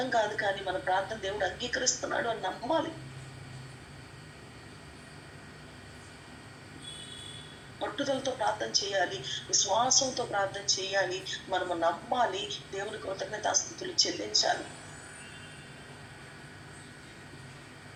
కాదు, కానీ మన ప్రార్థన దేవుడు అంగీకరిస్తున్నాడు అని నమ్మాలి. పట్టుదలతో ప్రార్థన చేయాలి, విశ్వాసంతో ప్రార్థన చేయాలి, మనము నమ్మాలి, దేవుని కృతజ్ఞతాస్తుతులు చెల్లించాలి.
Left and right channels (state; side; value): identical; both; correlation 1.00